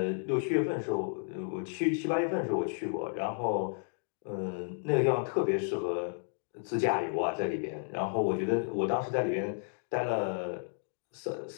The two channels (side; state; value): right; silent; digital silence